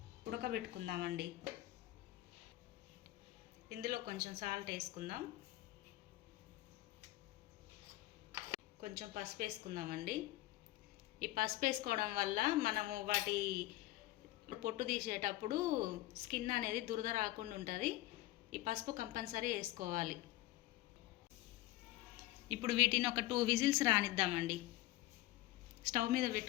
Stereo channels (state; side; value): quieter; right; 16.9 dB